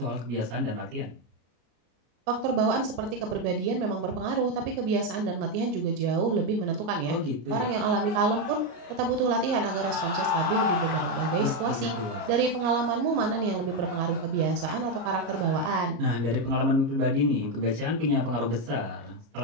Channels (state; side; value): late; left; 34 ms